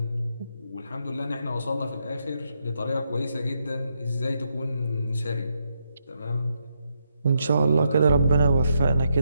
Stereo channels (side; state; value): both; inverted; correlation -0.80